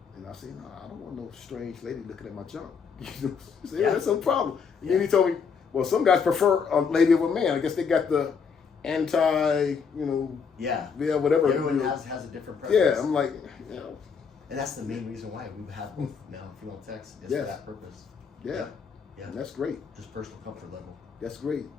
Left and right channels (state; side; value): quieter; right; 6.0 dB